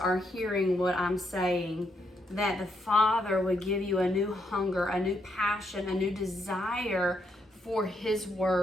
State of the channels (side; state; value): both; normal; correlation 0.76